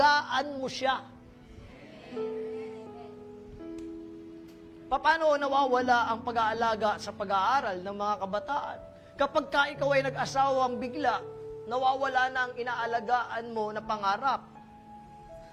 mo siya. Paano nawawala ang pag-aalaga sa pag-aaral ng mga kabataan? Kapag ka ikaw ay nag-asawang bigla, nawawala na ang inaalagaan mo na pangarap.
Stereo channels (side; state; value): both; identical; correlation 1.00